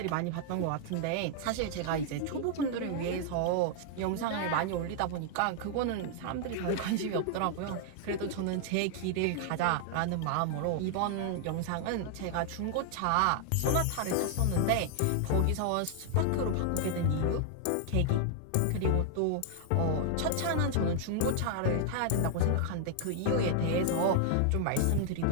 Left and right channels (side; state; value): both; different; correlation 0.00